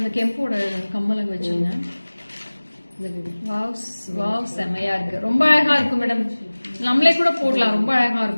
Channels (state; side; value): inverted; both; correlation -1.00